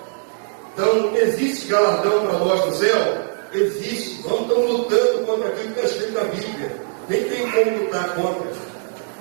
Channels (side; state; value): left; silent; 65 dB below the other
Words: Então, existe galardão para nós no céu? Existe. Nós estamos lutando contra aquilo que está escrito na Bíblia. Nem tem como lutar contra.